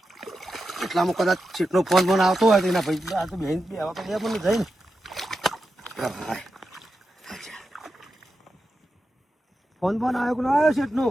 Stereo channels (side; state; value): both; normal; correlation 0.90